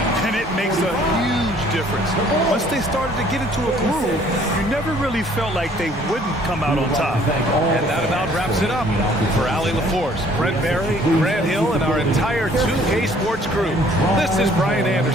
And it makes a huge difference. Once they started to get into a groove, you never really felt like they wouldn't come out on top. And that about wraps it up. For Allie LaForce, Brent Barry, Grant Hill, and our entire 2K Sports crew, this is Brian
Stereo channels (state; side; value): normal; both; correlation 0.58